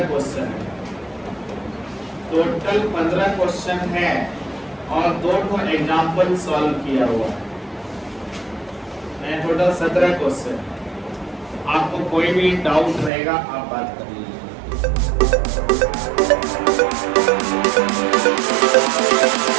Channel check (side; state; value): left; drops out; at 13.1 s